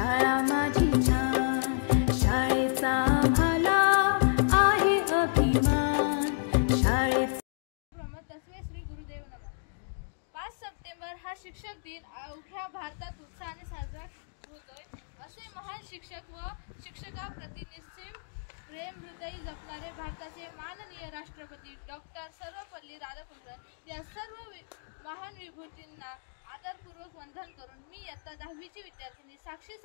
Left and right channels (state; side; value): silent; right; digital silence